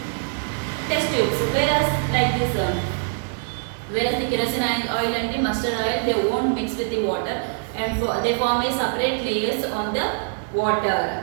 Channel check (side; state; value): left; silent; 63 dB below the other